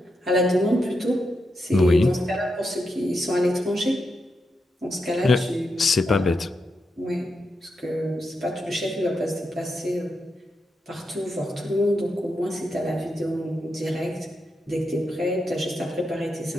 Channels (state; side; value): normal; both; correlation 0.85